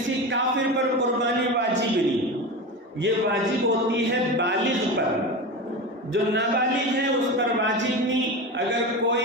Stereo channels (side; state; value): both; normal; correlation 0.24